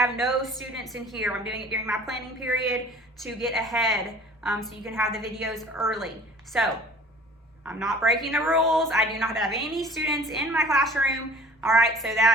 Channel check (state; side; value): normal; both; correlation 0.47